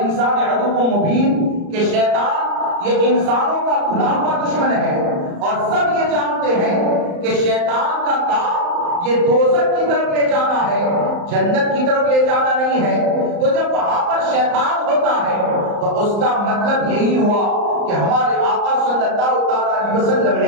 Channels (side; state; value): left; late; 34 ms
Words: عدو مبین کہ شیطان یہ انسانوں کا کھلا ہوا دشمن ہے، اور سب یہ جانتے ہیں کہ شیطان کا کام یہ دوزخ کی طرف لے جانا ہے، جنت کی طرف لے جانا نہیں ہے۔ تو جب وہاں پر شیطان ہوتا ہے تو اس کا مطلب یہی ہوا کہ ہمارے آقا صلی اللہ تعالی علیہ وسلم